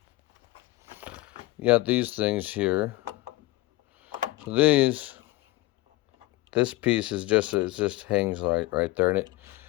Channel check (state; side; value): quieter; right; 19.2 dB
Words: You got these things here. So this piece is just, it just hangs right there, and it